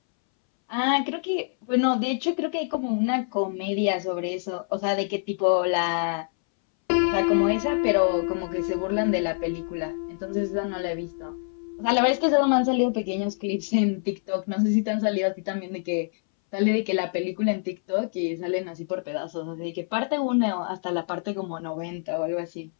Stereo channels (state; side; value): silent; right; 61 dB below the other